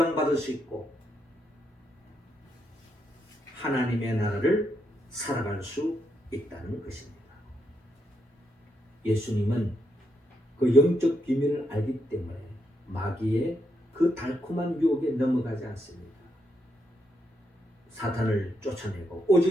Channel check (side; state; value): both; normal; correlation 0.79